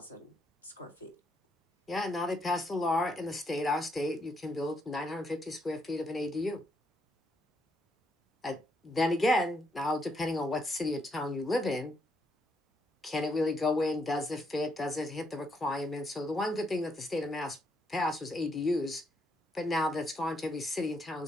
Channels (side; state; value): both; normal; correlation 0.76